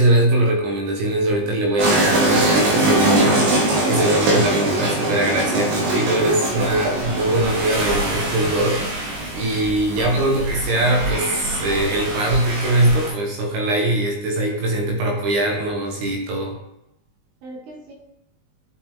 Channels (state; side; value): late; left; 20 ms